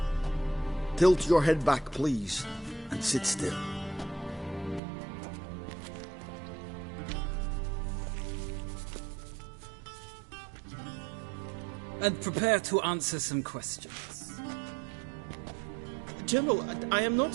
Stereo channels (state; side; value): drops out; left; at 4.8 s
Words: Tilt your head back, please, and sit still. And prepare to answer some questions. General, I am not